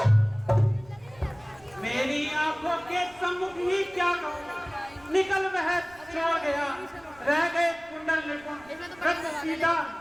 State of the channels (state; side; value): noise; right; rumble, 26 dB below the sound